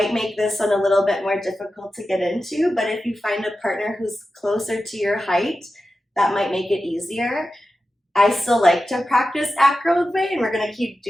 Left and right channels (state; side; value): normal; both; correlation 0.92